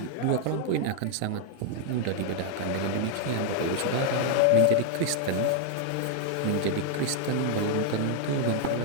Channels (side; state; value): both; different; correlation 0.00